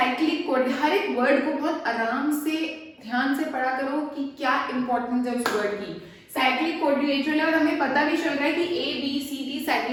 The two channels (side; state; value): both; identical; correlation 1.00